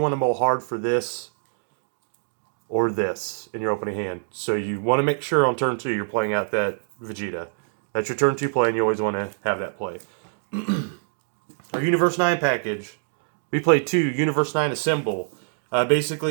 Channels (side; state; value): left; silent; digital silence